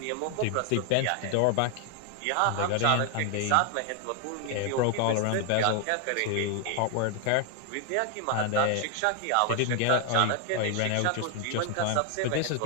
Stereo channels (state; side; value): different; both; correlation 0.00